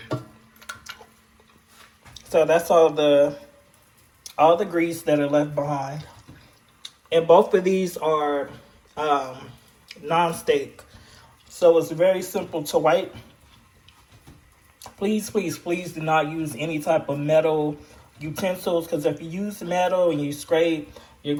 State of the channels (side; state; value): both; identical; correlation 1.00